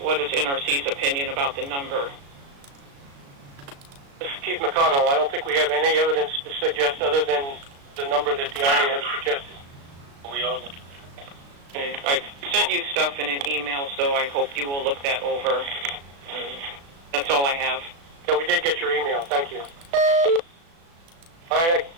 is NRC's opinion about the number? This is Keith McConnell. I don't think we have any evidence to suggest other than the number that the Army has suggested. We are looking. Okay. I've sent you stuff in an email, so I hope you will look that over. And that's all I have. Yeah, we did get your email. Thank you. All right,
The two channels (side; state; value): left; late; 36 ms